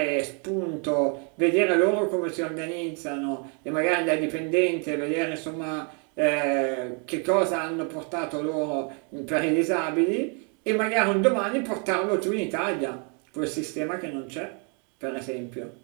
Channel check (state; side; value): quieter; left; 37.5 dB